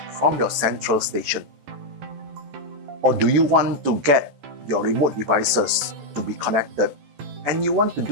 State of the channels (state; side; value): late; left; 14 ms